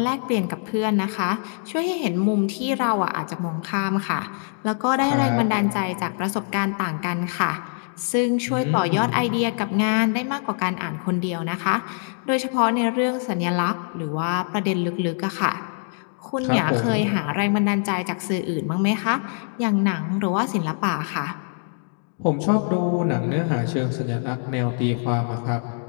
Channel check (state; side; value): silent; right; 59 dB below the other